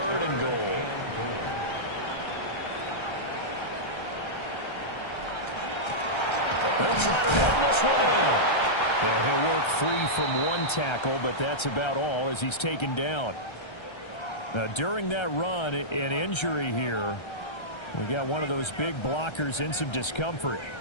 and goal. They'll try to run this one in. Yeah, he'll work free from one tackle, but that's about all as he's taken down. Now, during that run, an injury here. We got one of those big blockers in some discomfort.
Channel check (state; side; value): late; right; 1.3 ms